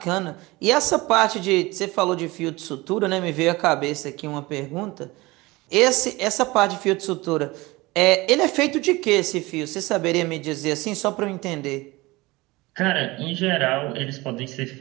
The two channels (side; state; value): left; quieter; 21.6 dB